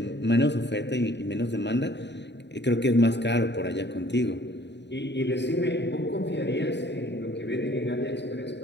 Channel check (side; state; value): right; late; 0.51 ms